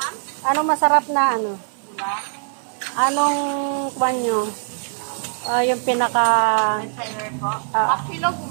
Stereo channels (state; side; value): silent; left; 56 dB below the other